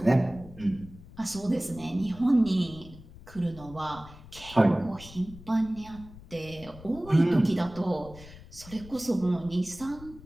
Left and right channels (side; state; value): left; noise; rumble, 18 dB below the sound